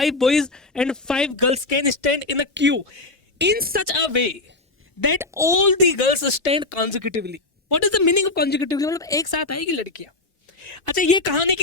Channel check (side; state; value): right; quieter; 3.1 dB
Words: boys and 5 girls can stand in a queue in such a way that all the girls stand consecutively. What is the meaning of consecutively? मतलब एक साथ आएगी लड़कियां। अच्छा, ये कहानी